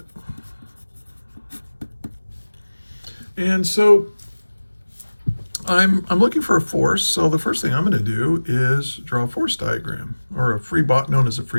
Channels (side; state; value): both; inverted; correlation -1.00